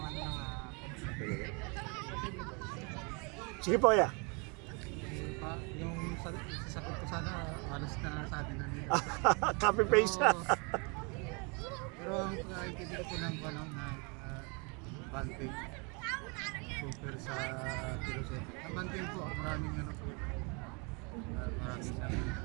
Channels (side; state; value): left; quieter; 32.2 dB